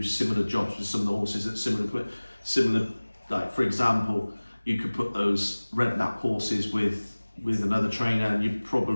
similar jobs with some of the horses at similar. Like for example, you could put those red nap horses with another trainer, and you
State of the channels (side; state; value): both; inverted; correlation -1.00